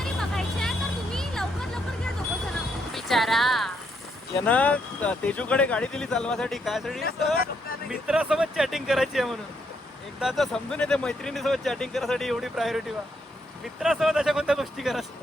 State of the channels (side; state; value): both; normal; correlation 0.75